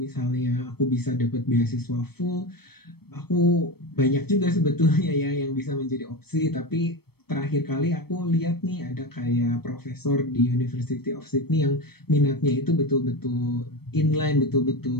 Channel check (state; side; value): late; right; 0.96 ms